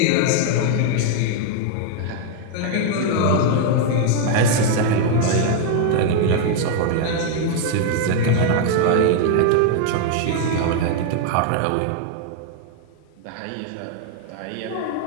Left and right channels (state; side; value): different; both; correlation 0.00